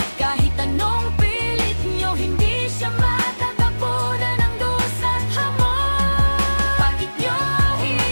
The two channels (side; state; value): both; inverted; correlation -1.00